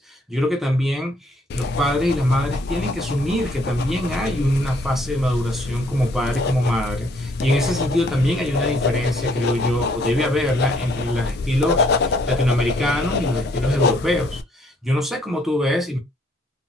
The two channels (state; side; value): normal; both; correlation 0.65